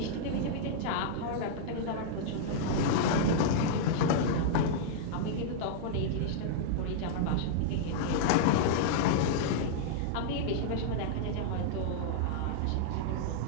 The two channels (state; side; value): different; both; correlation -0.02